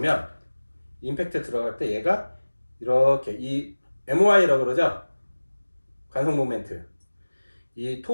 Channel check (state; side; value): inverted; both; correlation -1.00